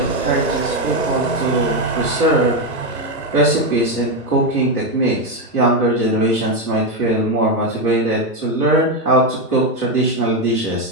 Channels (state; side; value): normal; both; correlation 0.08